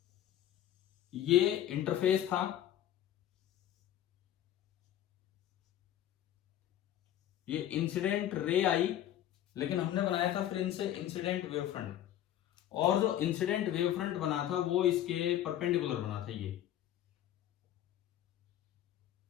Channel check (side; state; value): right; quieter; 11.9 dB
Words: ये इंटरफेस था, ये इंसिडेंट रे आई, लेकिन हमने बनाया था फिर इनसे इंसिडेंट वेव फ्रंट, और जो इंसिडेंट वेव फ्रंट बना था वो इसके परपेंडिकुलर बना था।